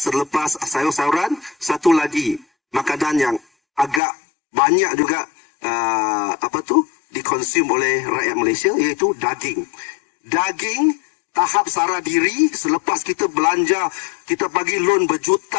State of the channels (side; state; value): right; drops out; at 4.0 s